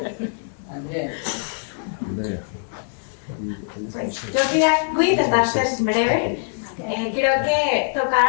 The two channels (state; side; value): silent; right; digital silence